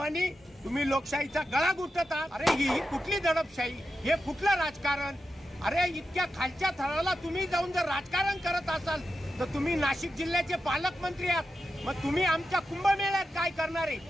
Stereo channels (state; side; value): normal; both; correlation 0.89